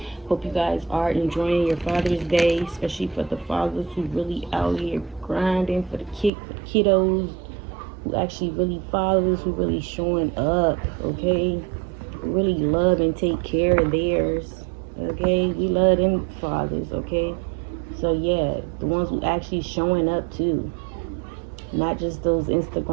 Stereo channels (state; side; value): drops out; left; at 6.3 s